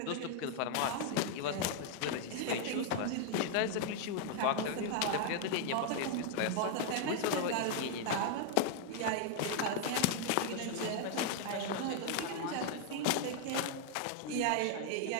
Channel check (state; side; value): different; both; correlation 0.00